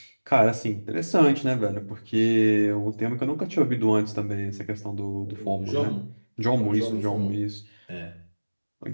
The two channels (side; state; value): both; inverted; correlation -1.00